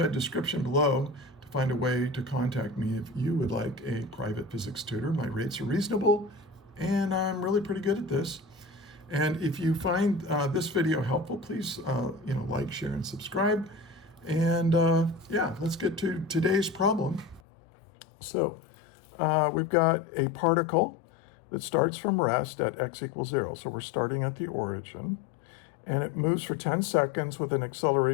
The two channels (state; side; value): drops out; right; at 17.4 s